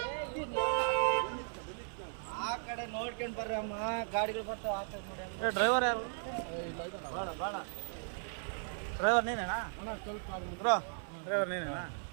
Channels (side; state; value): left; silent; 53 dB below the other